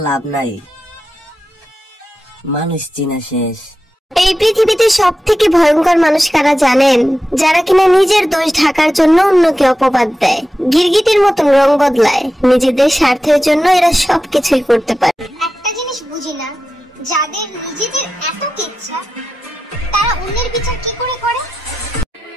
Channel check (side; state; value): both; normal; correlation 0.92